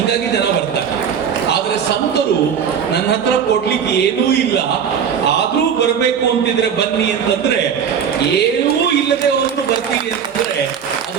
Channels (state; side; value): quieter; left; 7.7 dB